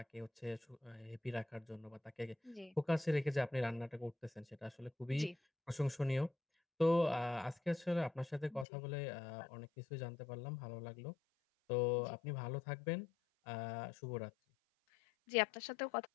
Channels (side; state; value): right; drops out; at 8.7 s